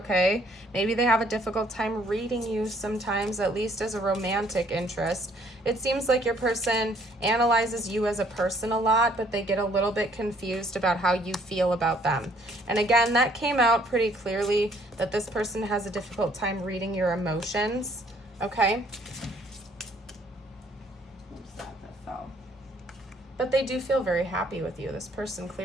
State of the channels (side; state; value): both; normal; correlation 0.63